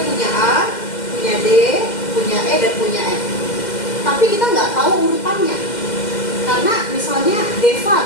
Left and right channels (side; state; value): right; late; 2.1 ms